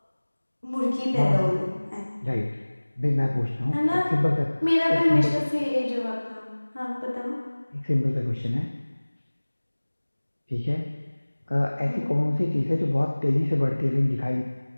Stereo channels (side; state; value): both; inverted; correlation -1.00